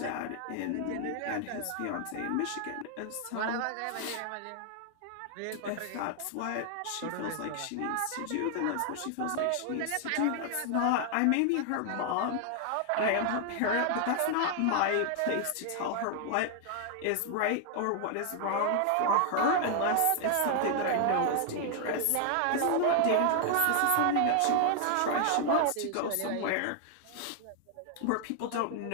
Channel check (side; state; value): both; different; correlation 0.00